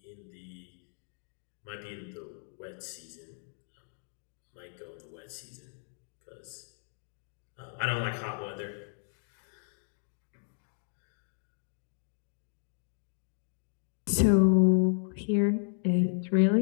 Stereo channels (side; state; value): right; silent; 55 dB below the other